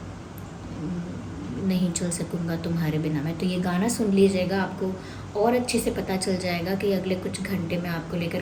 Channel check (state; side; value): identical; both; correlation 1.00